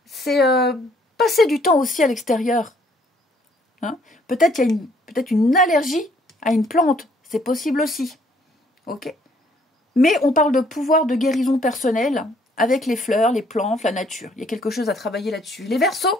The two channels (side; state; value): both; normal; correlation 0.64